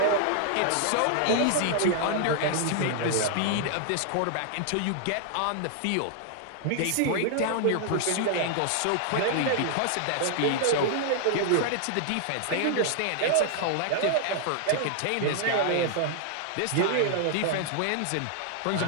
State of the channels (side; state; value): both; different; correlation -0.01